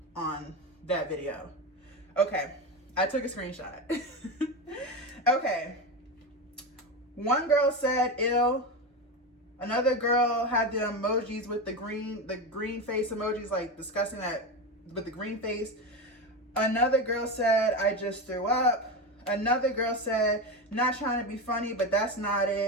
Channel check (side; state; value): both; normal; correlation 0.18